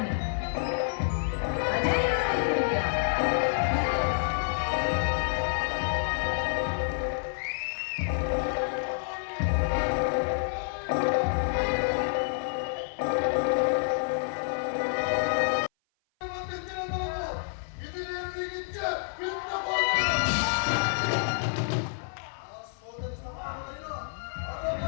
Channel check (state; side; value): silent; right; 56 dB below the other